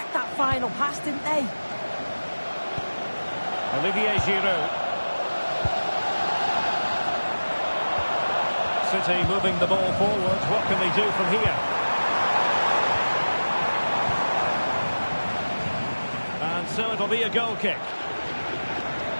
that final pass, didn't they? Olivier Giroud. City moving the ball forward. What can they do from here? And so it'll be a goal kick.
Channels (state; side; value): inverted; both; correlation -1.00